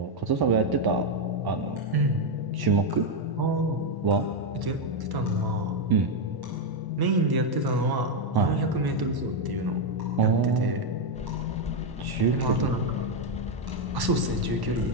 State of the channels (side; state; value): left; late; 1.1 ms